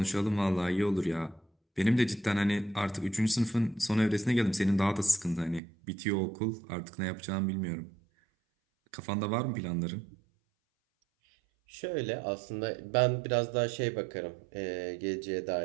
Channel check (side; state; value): left; drops out; at 5.6 s